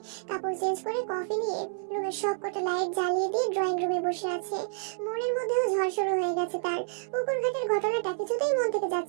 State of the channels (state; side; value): silent; left; 59 dB below the other